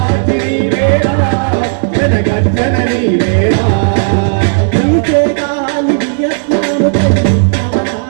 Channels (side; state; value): left; silent; digital silence